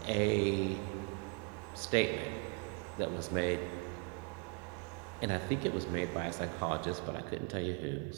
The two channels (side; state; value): left; quieter; 33.2 dB